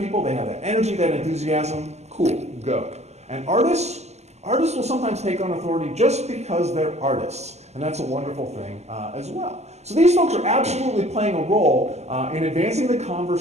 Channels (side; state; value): left; late; 0.32 ms